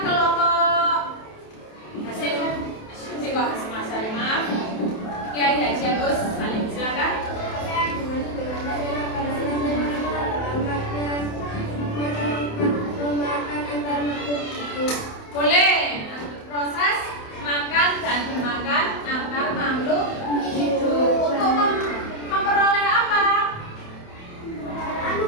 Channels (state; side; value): late; right; 28 ms